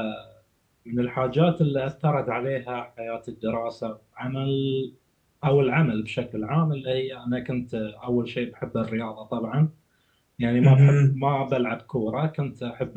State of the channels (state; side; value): identical; both; correlation 1.00